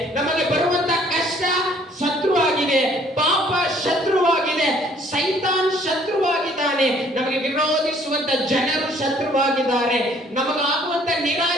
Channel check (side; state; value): both; normal; correlation 0.60